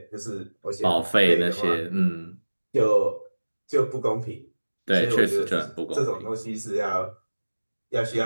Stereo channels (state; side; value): inverted; both; correlation -1.00